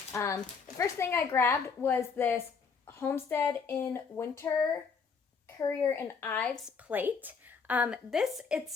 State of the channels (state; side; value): quieter; right; 5.5 dB